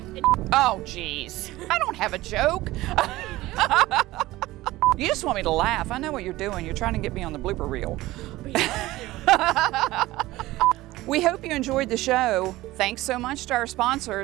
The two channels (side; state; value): left; quieter; 17.7 dB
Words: Oh, geez. I don't have a joke. You just want me to laugh. I know what you're doing. You're trying to get me on the blooper reel. We hope you enjoyed the show. Thanks so much to our